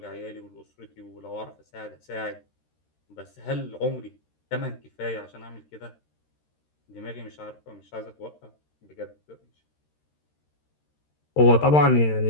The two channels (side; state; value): right; late; 13 ms